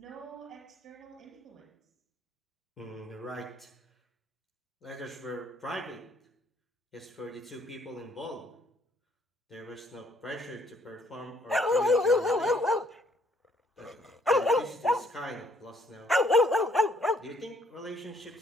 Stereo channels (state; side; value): normal; both; correlation 0.66